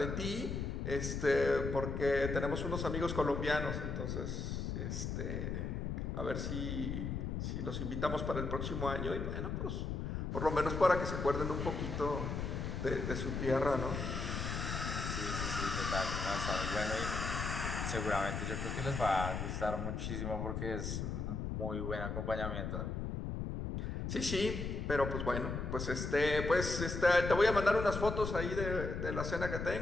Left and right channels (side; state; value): left; noise; rumble, 3 dB below the sound